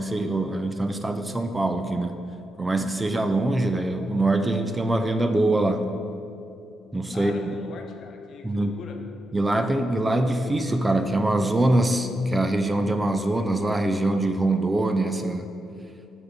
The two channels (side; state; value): both; normal; correlation 0.88